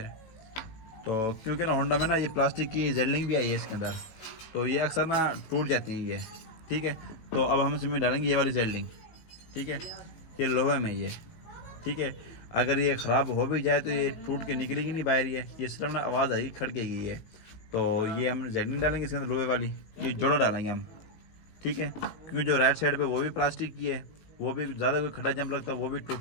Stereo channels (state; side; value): late; right; 18 ms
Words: तो क्योंकि ना होंडा में ना ये प्लास्टिक की जेडलिंग भी आई है इसके अंदर, तो ये अक्सर ना टूट जाती हैं ये। ठीक है, तो अब हम इसमें डालेंगे ये वाली जेडलिंग। ठीक है, ये लोहे में ये। ठीक है, अगर ये ख़राब हो भी जाए तो ये टूट के निकलेगी नहीं बाहर, ये सिर्फ ना आवाज़ आएगी, खड़केगी ये। तो ये हम जेडलिंग डालेंगे इसके अंदर लोहे वाली, ये जोड़ा डालेंगे हम। ठीक है, क्योंकि जो राइट साइड पे वो भी प्लास्टिक की है, वो भी ज़्यादा कोई खड्डा जंप लगता है वो भी टूट